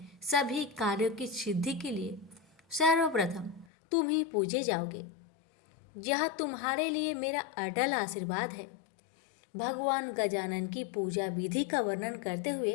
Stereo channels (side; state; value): right; drops out; at 3.7 s